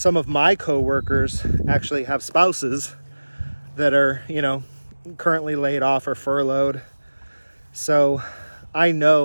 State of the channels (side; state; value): both; inverted; correlation -1.00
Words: of my coworkers actually have spouses that are, you know, currently laid off or furloughed. So I